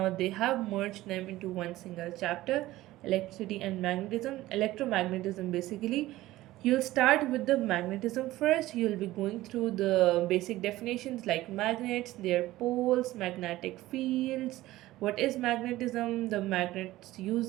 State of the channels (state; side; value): quieter; left; 16.6 dB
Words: they have merged them into one single chapter. electricity and magnetism. Electromagnetism, basically, you'll start with the magnetism first. You'll be going through the basic definitions like magnets, their poles, magnetic fields, what is magnetism, the magnets